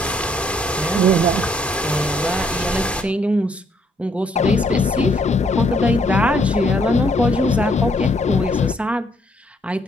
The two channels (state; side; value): normal; both; correlation 0.69